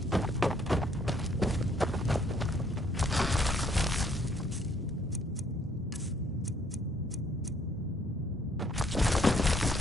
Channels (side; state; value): both; normal; correlation 0.66